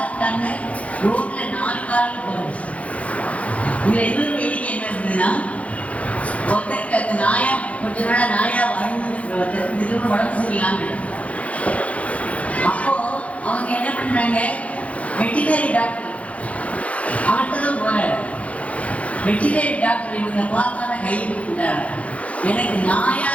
இருக்காங்க. ரோட்ல 4 காலில் போகிறது. இதுல எதுவும் வேடிக்கை என்ன இருந்ததுன்னா, ஒருத்தருக்கு அந்த நாயா கொஞ்ச நாளா நாயா வாழ்ந்துருக்கிற ஒருத்தருக்கு திடீர்னு உடம்பு சரியில்லாம. அப்போ அவங்க என்ன பண்றாங்க, வெட்டினரி டாக்டர் அவர்கிட்டதான் போறாரு. வெட்டினரி டாக்டர் இவங்க பார்த்தான கை கொடுத்துட்டாரு. எனக்கு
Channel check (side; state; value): right; late; 0.065 ms